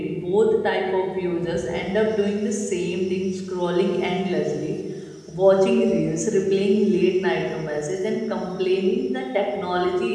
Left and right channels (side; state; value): both; identical; correlation 1.00